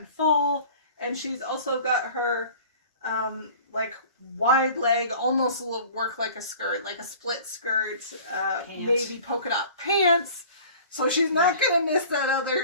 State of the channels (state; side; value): inverted; both; correlation -0.45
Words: fall. And she's also got her like wide leg, almost work like a skirt, like a split skirt, navy polka dot pants. So she's not going to miss that